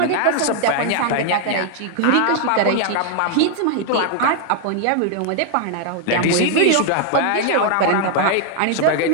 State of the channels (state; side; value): different; both; correlation 0.00